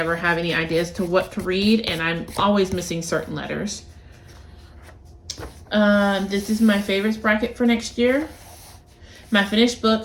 have any ideas to what to read, and I'm always missing certain letters. This is my favorites bracket for next year. My finished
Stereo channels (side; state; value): both; identical; correlation 1.00